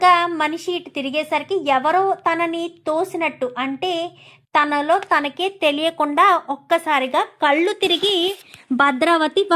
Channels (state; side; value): identical; both; correlation 1.00